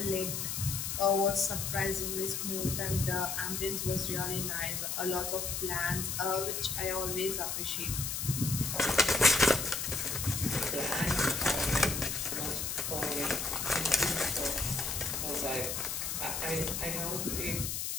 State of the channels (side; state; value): left; noise; hiss, 2 dB below the sound